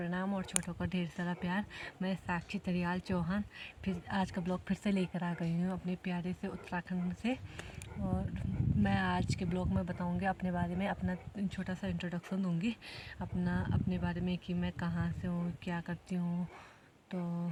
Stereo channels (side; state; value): both; identical; correlation 1.00